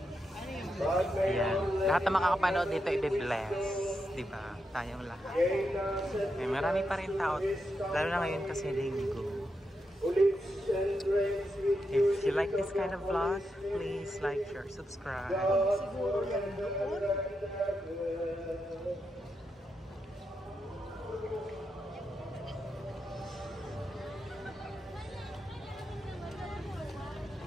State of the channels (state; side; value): normal; both; correlation 0.85